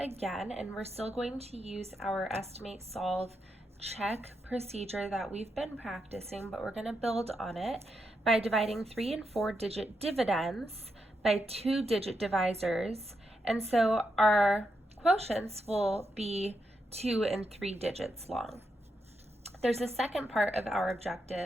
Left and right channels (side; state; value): both; normal; correlation 0.83